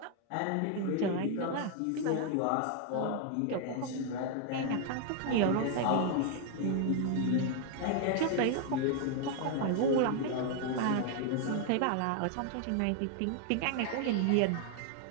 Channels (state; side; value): different; both; correlation 0.00